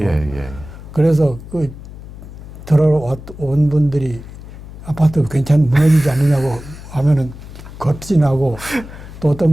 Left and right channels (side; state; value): left; noise; hum, 15 dB below the sound